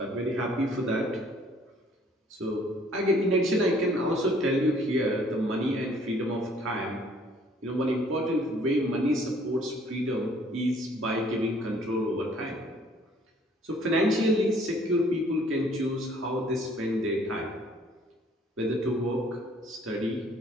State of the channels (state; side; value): normal; both; correlation 0.59